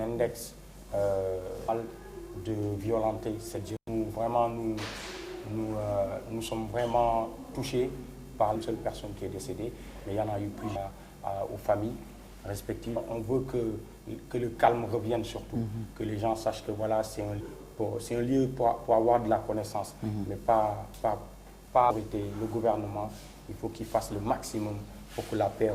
de violenter cette jeunesse. Vraiment, nous sommes vraiment touchés par une seule personne qui est décédée, mais il y en a eu plusieurs aux familles respectives. On veut que le calme revienne surtout, que les gens sachent que voilà, c'est un lieu pour avoir de la connaissance, mais pas le gouvernement. Il faut qu'il fasse le maximum pour que la paix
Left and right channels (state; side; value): identical; both; correlation 1.00